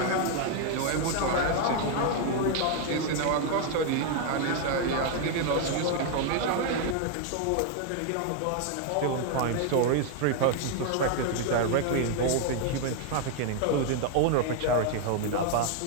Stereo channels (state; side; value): different; both; correlation 0.00